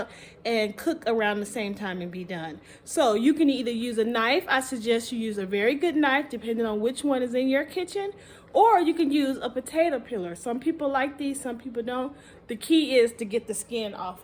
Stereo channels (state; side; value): identical; both; correlation 1.00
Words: and cook around the same time and be done. So you can either use a knife. I suggest you use a very good knife depending on which one is in your kitchen, or you can use a potato peeler. Some people like these, some people don't. The key is to get the skin